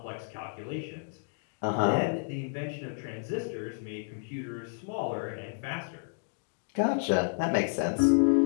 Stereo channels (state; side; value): silent; right; digital silence